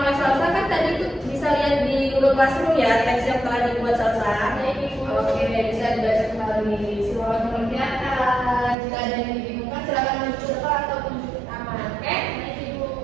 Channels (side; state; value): left; drops out; at 8.8 s